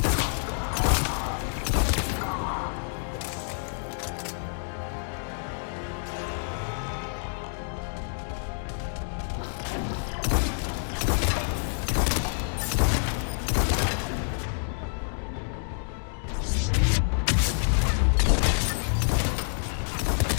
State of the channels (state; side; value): silent; right; digital silence